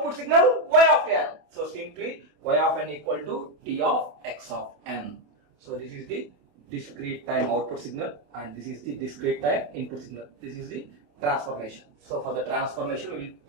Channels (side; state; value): left; late; 27 ms